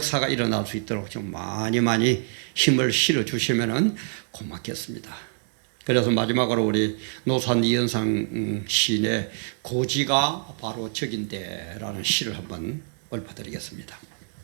일어날 수 있도록 좀 많이 힘을 실어 주시면은 고맙겠습니다. 그래서 마지막으로 우리 노산 이현상 시인의 고지가 바로 적인데라는 시를 한번 읊어드리겠습니다.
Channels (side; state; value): left; silent; 61 dB below the other